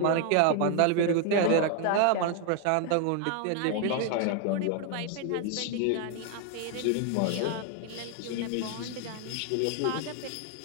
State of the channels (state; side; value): different; both; correlation 0.00